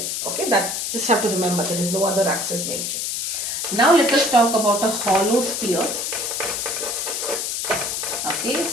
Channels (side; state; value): left; noise; hiss, 2 dB below the sound